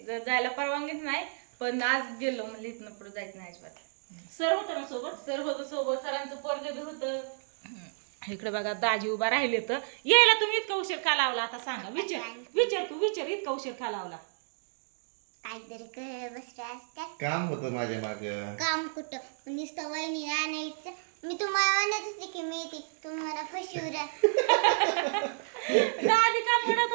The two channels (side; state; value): left; silent; digital silence